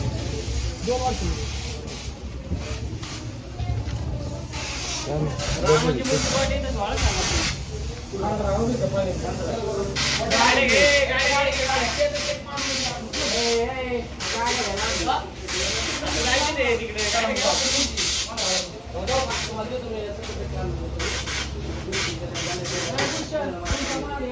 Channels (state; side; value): identical; both; correlation 1.00